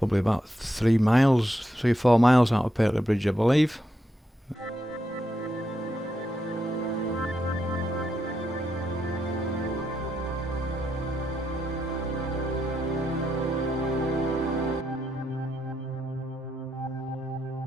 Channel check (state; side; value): normal; both; correlation 0.82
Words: about 3 or 4 miles out of Pateley Bridge, I believe.